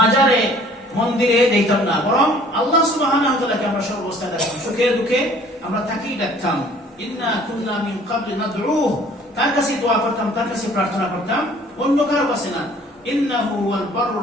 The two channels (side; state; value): both; normal; correlation 0.54